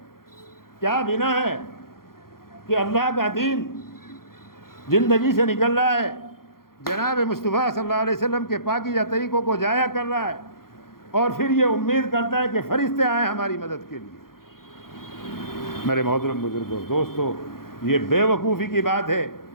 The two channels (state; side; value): late; right; 0.92 ms